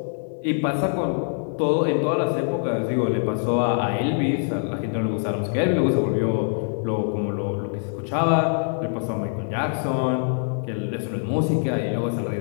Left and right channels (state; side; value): silent; right; 63 dB below the other